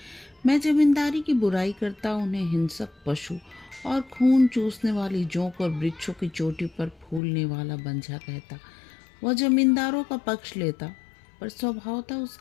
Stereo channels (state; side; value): drops out; right; at 7.2 s